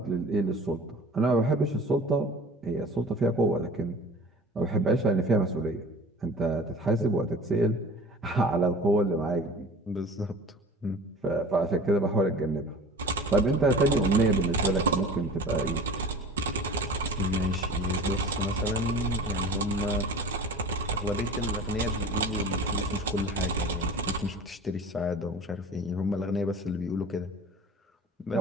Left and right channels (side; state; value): both; normal; correlation 0.40